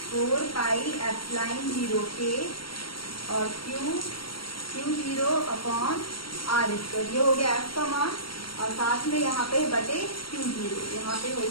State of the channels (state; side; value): late; right; 0.74 ms